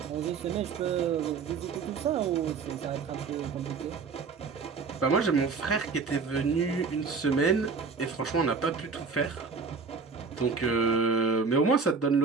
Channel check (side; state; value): left; quieter; 4.9 dB